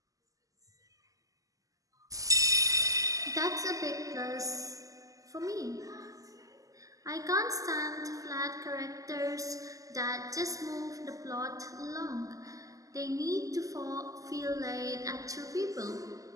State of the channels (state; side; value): late; left; 0.17 ms